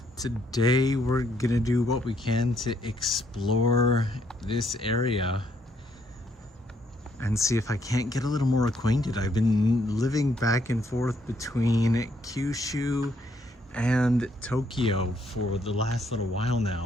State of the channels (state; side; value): normal; both; correlation 0.71